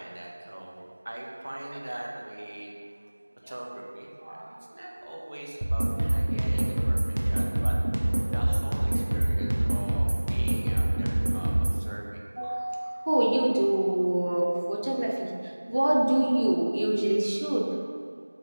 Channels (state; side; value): inverted; both; correlation -1.00